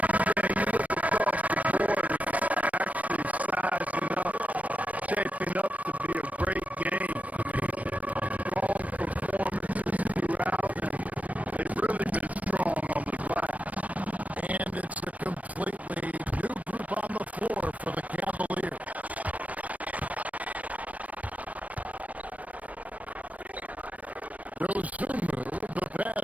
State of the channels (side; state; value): left; late; 0.068 ms